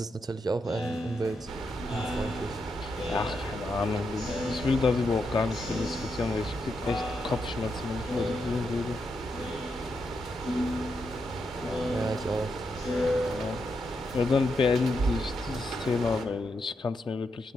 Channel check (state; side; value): normal; both; correlation 0.83